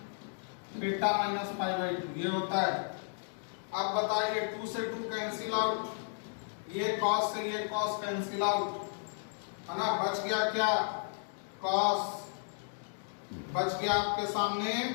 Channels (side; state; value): right; silent; digital silence